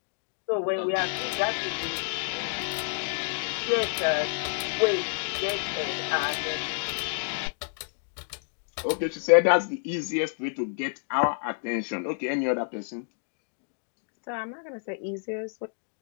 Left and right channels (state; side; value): silent; right; digital silence